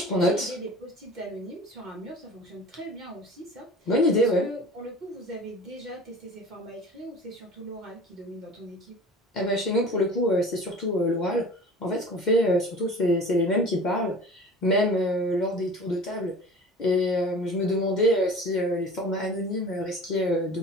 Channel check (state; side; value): normal; both; correlation 0.40